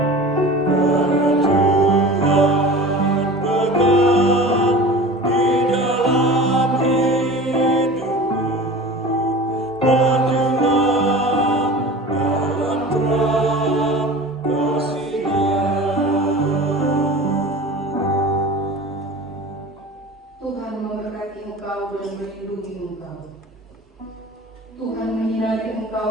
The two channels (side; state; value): both; normal; correlation 0.37